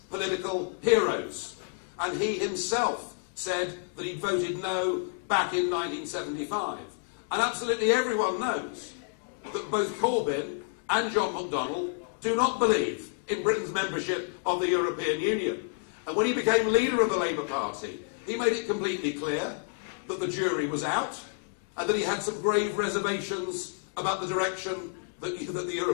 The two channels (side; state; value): right; silent; digital silence